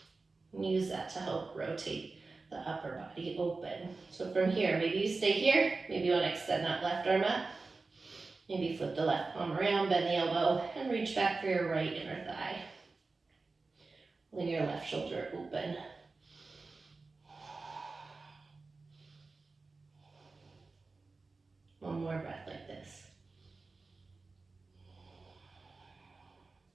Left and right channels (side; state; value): left; quieter; 3.8 dB